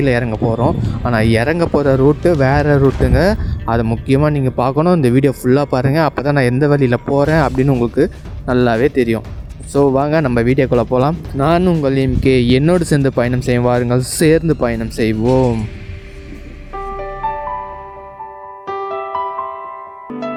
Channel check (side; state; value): both; identical; correlation 1.00